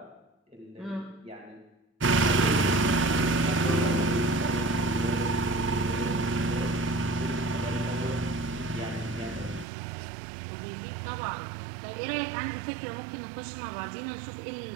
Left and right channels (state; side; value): drops out; left; at 9.7 s